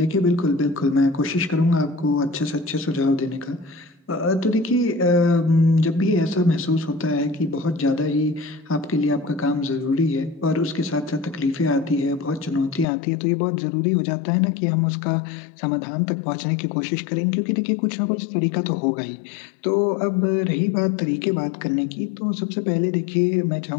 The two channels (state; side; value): drops out; right; at 12.9 s